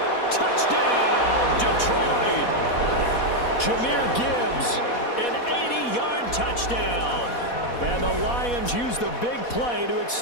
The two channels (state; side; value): late; right; 4.1 ms